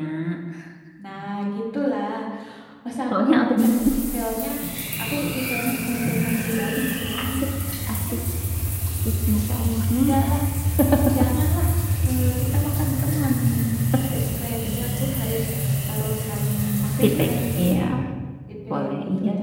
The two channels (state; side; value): identical; both; correlation 1.00